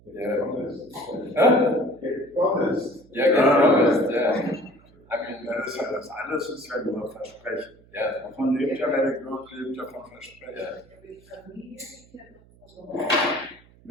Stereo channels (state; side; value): noise; right; hum, 27 dB below the sound